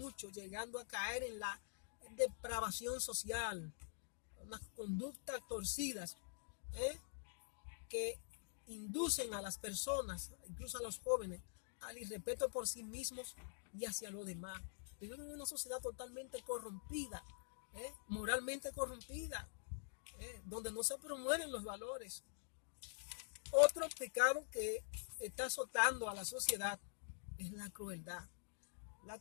llegando a caer en la depravación social, unas conductas torcidas que inducen a las personas, incluso a los jóvenes, al irrespeto por sí mismos y hacia los demás. Vivimos en una sociedad totalmente corrompida, moralmente corrompida, donde no se promueven los valores. Otro pecado que está azotando a la sociedad es la crueldad. La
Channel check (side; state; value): right; silent; digital silence